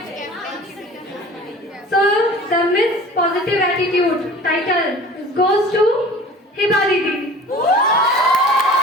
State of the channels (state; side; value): normal; both; correlation 0.43